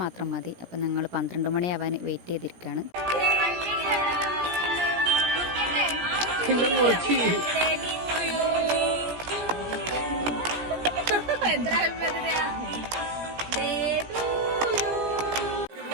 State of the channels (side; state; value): left; late; 17 ms